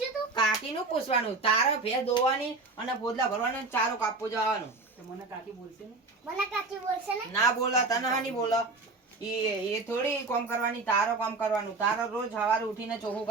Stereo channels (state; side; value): quieter; left; 3.6 dB